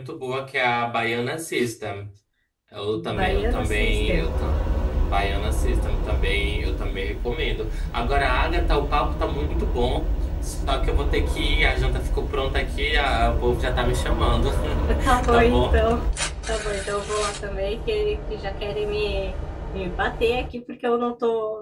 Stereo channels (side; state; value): both; identical; correlation 1.00